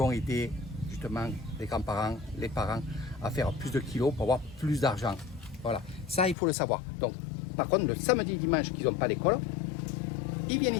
aider justement les grands-parents, les parents à faire plus de kilos pour avoir plus d'argent. Voilà, ça il faut le savoir. Donc par contre le samedi et dimanche qu'ils n'ont pas l'école, ils viennent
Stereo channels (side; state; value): right; drops out; at 6.4 s